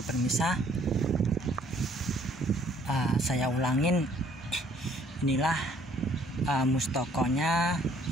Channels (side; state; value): both; normal; correlation 0.61